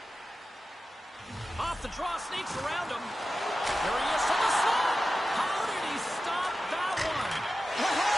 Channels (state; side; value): normal; both; correlation 0.93